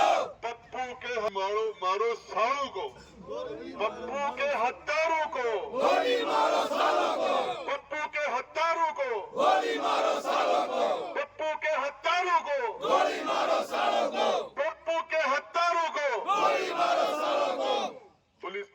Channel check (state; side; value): identical; both; correlation 1.00